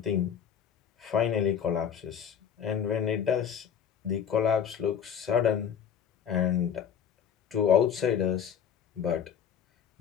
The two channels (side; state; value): right; quieter; 8.1 dB